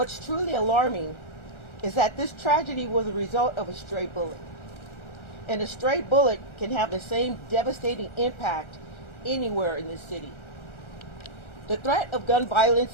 truly alarming is that this tragedy was a result of a stray bullet. And a stray bullet can have the same devastating impact anywhere in this city. The threat of gun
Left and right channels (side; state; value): right; late; 1.4 ms